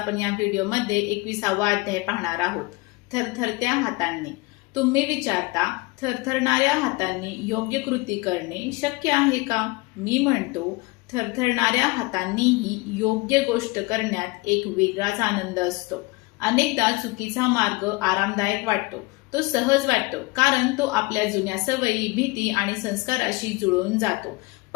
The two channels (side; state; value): right; quieter; 24.1 dB